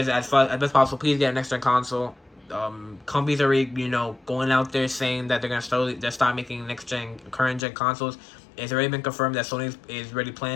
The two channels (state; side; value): drops out; right; at 7.6 s